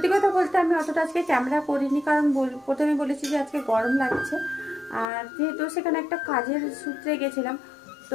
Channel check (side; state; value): right; drops out; at 5.1 s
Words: কথা বলতে আমি অতটা আজকে ক্যামেরা করিনি, কারণ প্রথমে বলেছি যে আজকে গরম লাগছে, আর যেহেতু সেখানে একটা কাজের সূত্রে গেছিলাম, তো